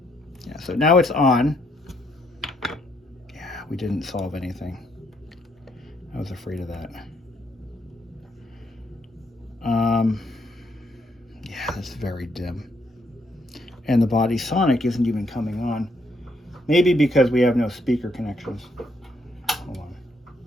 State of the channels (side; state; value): both; normal; correlation 0.73